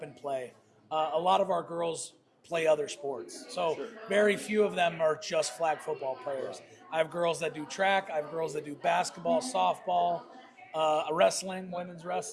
and play. A lot of our girls play other sports, so very few of them are just flag football players. I have girls that do track. I have girls that do basketball, softball, wrestling, women's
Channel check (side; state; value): both; identical; correlation 1.00